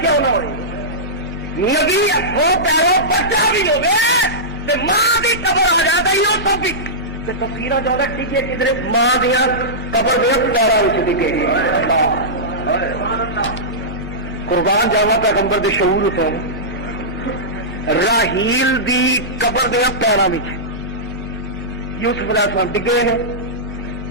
نہ ہوئے نبی ہاتھوں پیروں بچا بھی ہوگے ماں کی قبر آ جاتا ہی وہ سب بھی تفصیل زیادہ ٹکے کدھر ماں دیا قبر دیا پیروں ٹکے قربان جاوا پیغمبر دے شعور سے راہیل دی قبر دیا پیروں میں یوسف علیہ السلام ڈگے ہیں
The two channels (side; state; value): both; normal; correlation -0.15